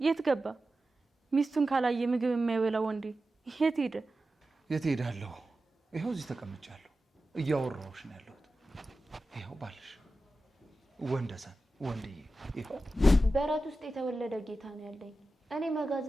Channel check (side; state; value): both; normal; correlation 0.93